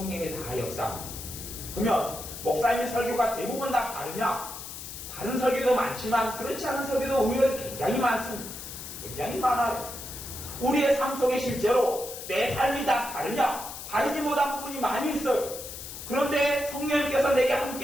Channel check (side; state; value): left; noise; hiss, 10 dB below the sound